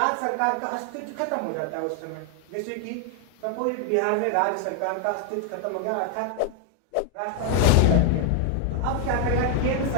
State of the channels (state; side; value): different; both; correlation 0.00